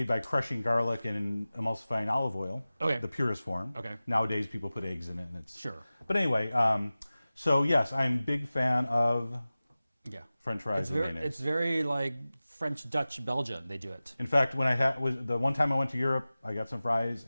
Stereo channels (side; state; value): both; inverted; correlation -0.97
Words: by crushing garlic and emulsifying olive oil. Okay. The purest form. Okay. Nowadays, people put eggs in it, and it's. Sure. But anyway, so yes, I'm a big fan of Yeah. French fries It's and very, mayonnaise. it's very like French, Dutch, Belgian. They do it. In fact, when was the one time I went to Europe, I got some fries